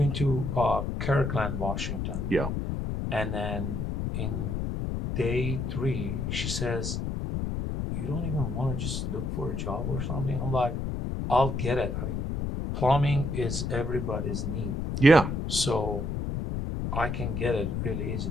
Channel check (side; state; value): left; noise; rumble, 2 dB below the sound